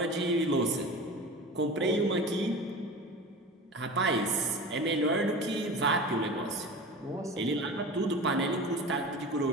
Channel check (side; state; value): both; normal; correlation 0.33